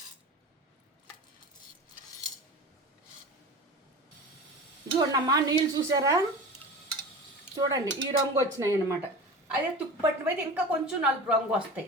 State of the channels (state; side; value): normal; both; correlation 0.33